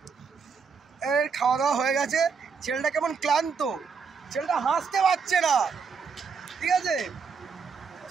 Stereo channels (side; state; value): left; quieter; 5.6 dB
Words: এর খাওয়া দাওয়া হয়ে গেছে। ছেলেটা কেমন ক্লান্ত, ছেলেটা হাসতে পারছে না, ঠিক আছে।